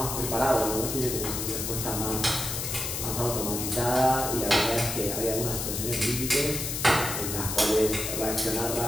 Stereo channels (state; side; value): noise; left; hiss, 3 dB below the sound